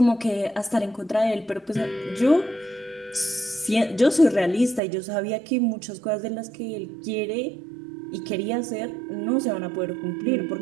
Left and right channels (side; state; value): left; drops out; at 4.8 s